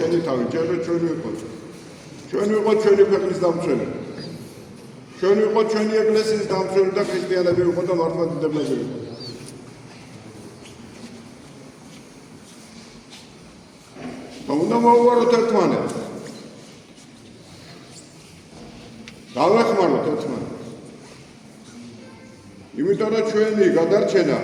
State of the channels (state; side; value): identical; both; correlation 1.00